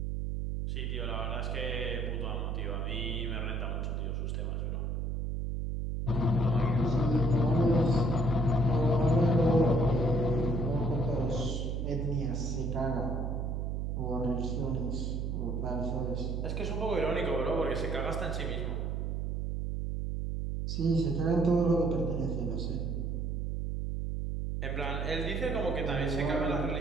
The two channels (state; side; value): noise; right; hum, 1 dB below the sound